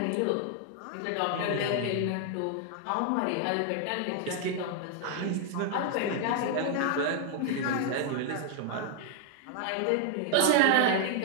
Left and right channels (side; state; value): both; different; correlation 0.00